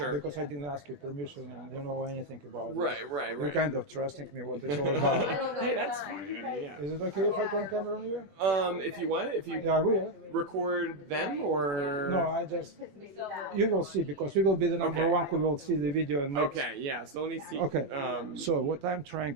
Because I didn't ask you permission and you don't know anything about Right. this. You're kind of trusting me what it's all about. Hey, that's fine. Yeah. Is it okay if I turn camera on you? If you want, if you Yeah, I will. record them or No, you will see because you will be the number Okay. one who will see the video and make. Okay. Yeah. So let me see. Okay. So what I'm trying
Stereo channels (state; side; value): late; left; 21 ms